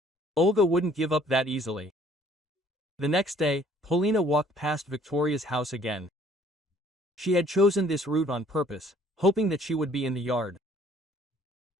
Olga wouldn't give up that easily. The next day, Polina walked past Victoria's house again. She had chosen this route on purpose, hoping that she would be in the yard.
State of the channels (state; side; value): normal; both; correlation 0.58